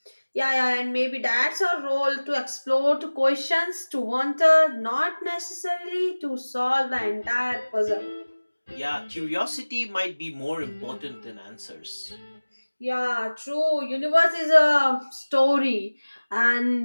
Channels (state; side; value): inverted; both; correlation -1.00